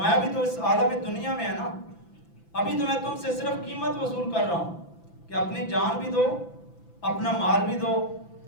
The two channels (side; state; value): right; late; 5.9 ms